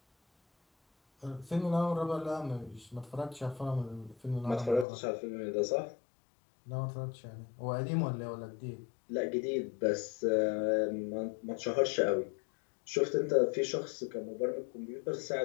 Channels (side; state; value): right; drops out; at 4.9 s